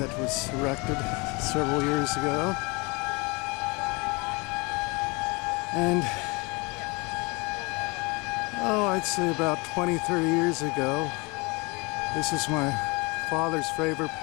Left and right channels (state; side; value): quieter; right; 27.6 dB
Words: was erected several years ago, and I'd say about 20-30 years ago, this is my father's favorite